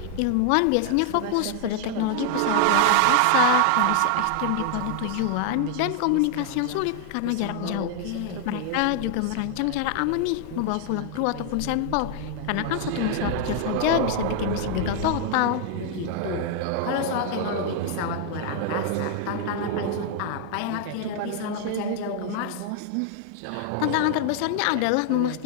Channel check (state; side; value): different; both; correlation 0.00